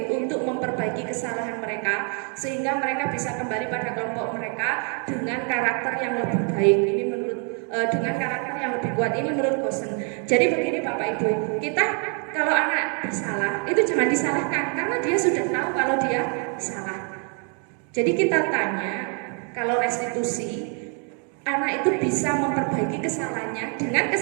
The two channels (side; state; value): left; quieter; 39.9 dB